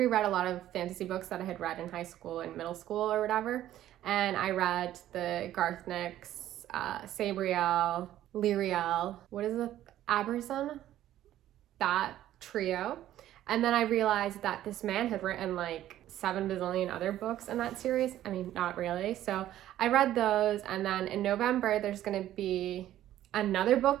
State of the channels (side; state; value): left; quieter; 12.9 dB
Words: a lot of fantasy books that I had read in high school and middle school or whatever, and I read the Garth Nix, Sabriel, Lyriel, what is it, Aberson? That trio. And then I realized that this man had written 7 bazillion other books in that series. I mean, not really. So I read those, and then in November, there's gonna be another book